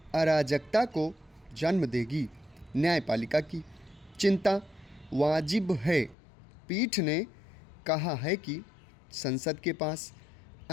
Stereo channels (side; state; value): right; drops out; at 6.2 s